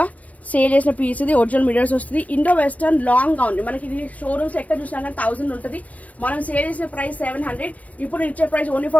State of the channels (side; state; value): right; late; 0.068 ms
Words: సేల్ చేసిన పీస్ ఇది ఒరిజినల్ మిరర్స్ వస్తుంది ఇండో వెస్టర్న్ లాంగ్ గౌన్ మనకి ఇది షోరూమ్స్ ఎక్కడ చూసినా కానీ 1000 ఉంటుంది మనం సేల్ చేసే ప్రైస్ 700 ఇప్పుడు ఇచ్చే ప్రైస్ ఓన్లీ